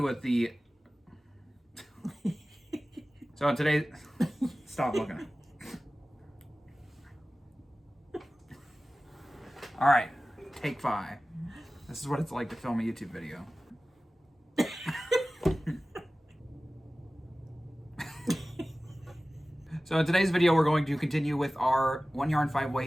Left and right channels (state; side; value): normal; both; correlation 0.97